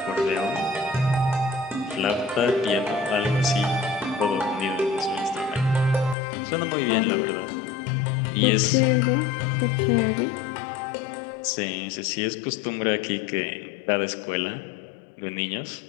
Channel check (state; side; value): drops out; right; at 6.2 s